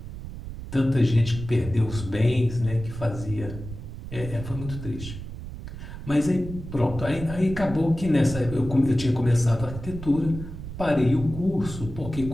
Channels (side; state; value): right; noise; rumble, 10 dB below the sound